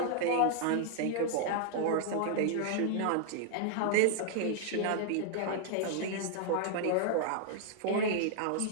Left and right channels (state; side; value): different; both; correlation 0.00